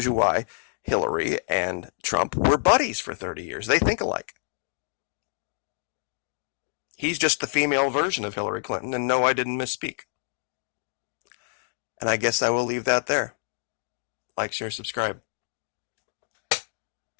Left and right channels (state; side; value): silent; right; digital silence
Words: you why Hillary and Trump were buddies for 30 years. They think alike. He's just the female version of Hillary Clinton, and no, I didn't misspeak. And I guess I will leave that there. Like, share, subscribe.